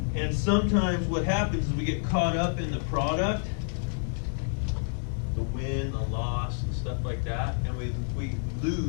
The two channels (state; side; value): silent; right; digital silence